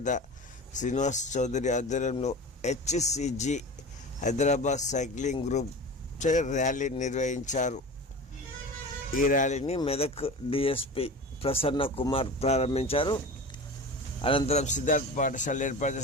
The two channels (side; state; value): both; normal; correlation 0.32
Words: శ్రీనివాస్ చౌదరి ఆధ్వర్యంలో HCG Hyderabad cycling group rally నిర్వహించారు. ఈ ర్యాలీని మెదక్ డిఎస్పి ప్రసన్న కుమార్ ప్రారంభించారు. అనంతరం సిద్ధార్థ పాఠశాల ఏర్పాటు